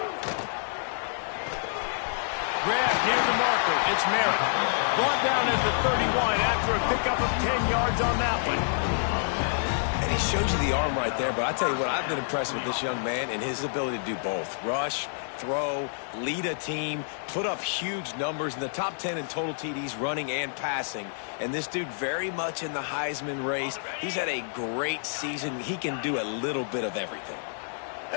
Grab near the marker, it's Merritt. Brought down at the 31 after a pickup of 10 yards on that one. And he shows you the arm right there, but I tell you what, I've been impressed with this young man and his ability to do both. Rush, throw, lead a team, put up huge numbers in the top 10 in total TDs running and passing. And this dude very much in the Heisman race. He's had a great season. He can do a little bit of everything.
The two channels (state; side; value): silent; right; 59 dB below the other